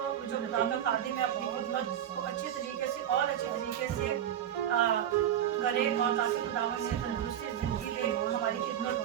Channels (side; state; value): left; quieter; 10.4 dB